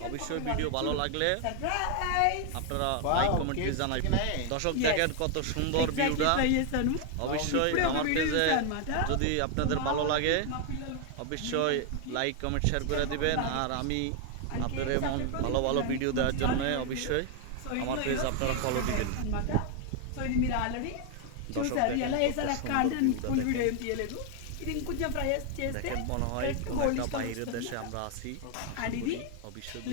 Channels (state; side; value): different; both; correlation 0.00